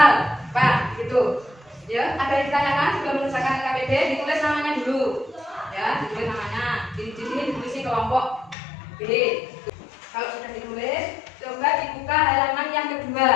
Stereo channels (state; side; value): drops out; right; at 8.6 s